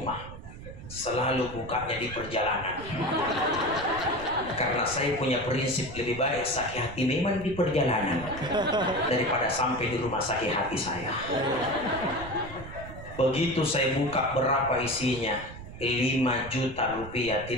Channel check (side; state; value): right; noise; rumble, 13 dB below the sound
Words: selalu bukanya di perjalanan. Karena saya punya prinsip, lebih baik sakit hati memang di perjalanan daripada sampai di rumah sakit hati saya. Begitu saya buka, berapa isinya? 5 juta rupiah,